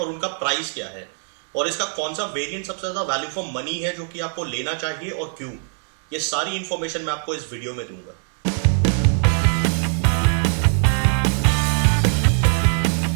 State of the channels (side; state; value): left; silent; 57 dB below the other